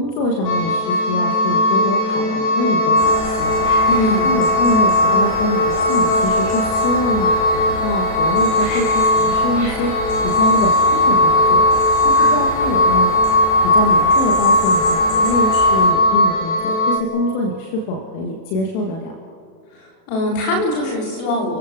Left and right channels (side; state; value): right; late; 37 ms